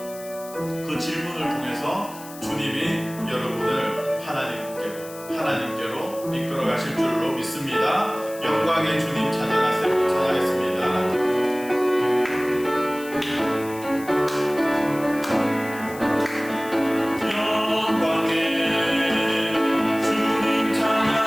그 질문을 통해서 주님이 여러분을 하나님께로 이끌어 가실 줄로 믿습니다. 영광의 주님 찬양하세요. 찬양했습니다. 주님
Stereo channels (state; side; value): noise; left; hiss, 17 dB below the sound